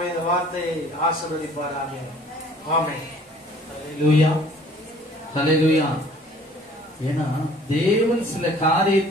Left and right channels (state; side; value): normal; both; correlation 0.54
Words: இந்த வார்த்தையை ஆசீர்வதிப்பாராக. ஆமென். அல்லேலூயா. அல்லேலூயா. ஏன்னா தேவன் சில